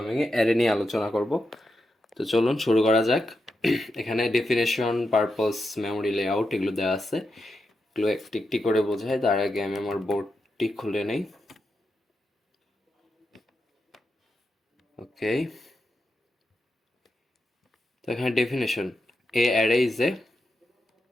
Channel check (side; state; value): both; normal; correlation 0.87